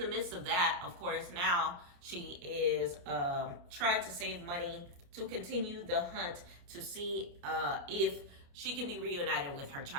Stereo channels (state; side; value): late; left; 29 ms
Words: midst of that, of course, now she is trying to save money to continue the hunt to see if she can be reunited with her